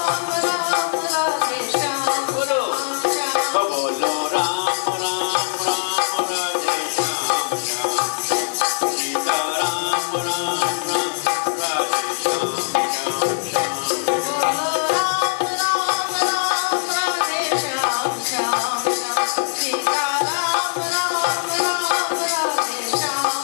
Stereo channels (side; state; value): right; silent; digital silence